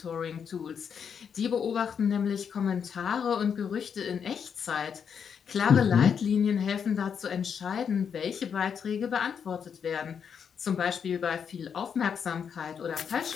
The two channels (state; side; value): quieter; right; 7.2 dB